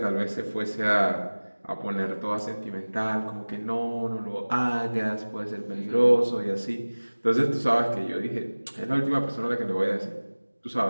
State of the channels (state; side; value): inverted; both; correlation -1.00